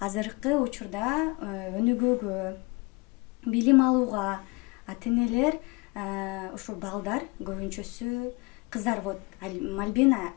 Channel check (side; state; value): right; quieter; 26.6 dB